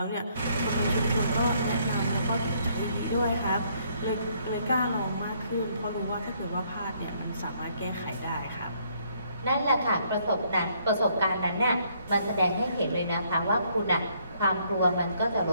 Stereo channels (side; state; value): both; inverted; correlation -0.68